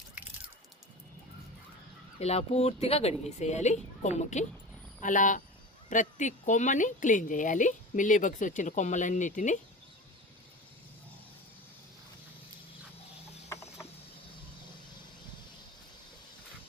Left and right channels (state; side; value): normal; both; correlation 0.32